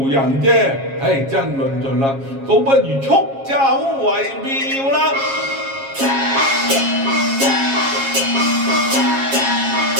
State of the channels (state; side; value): late; left; 7.4 ms